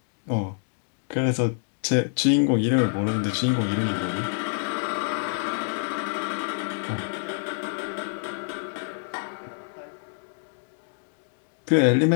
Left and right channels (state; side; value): silent; right; digital silence